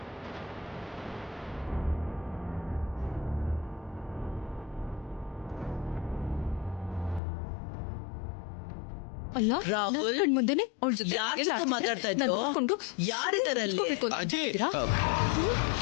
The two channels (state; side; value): drops out; right; at 7.2 s